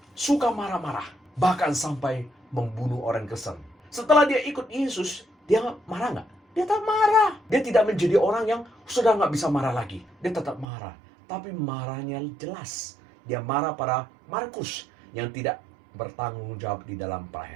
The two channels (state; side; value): drops out; left; at 10.7 s